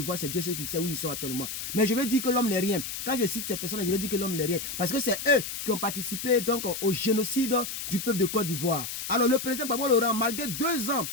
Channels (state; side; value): noise; left; hiss, 6 dB below the sound